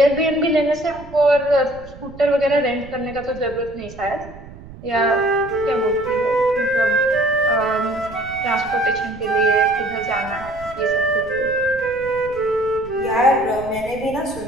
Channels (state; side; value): noise; right; rumble, 17 dB below the sound